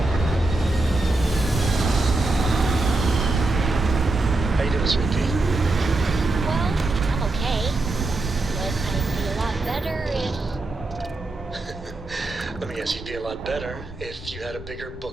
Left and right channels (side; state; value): left; quieter; 3.0 dB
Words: How you doing, sweetie? Well, I'm okay. But I'd be a lot better if... Let me guess, you'd be a lot better if you had a bigger